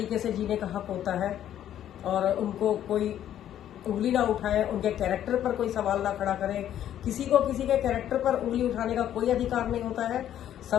से जीने का हक होता है और उनको कोई उंगली ना उठाए, उनके कैरेक्टर पर कोई सवाल ना खड़ा करे। किसी को किसी के कैरेक्टर पर उंगली उठाने का कोई अधिकार नहीं होता है।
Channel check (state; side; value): quieter; right; 11.1 dB